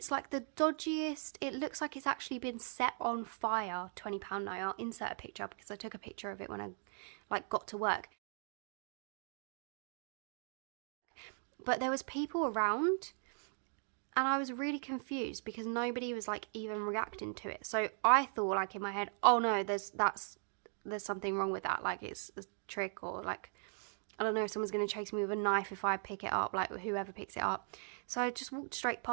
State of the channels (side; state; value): left; silent; 52 dB below the other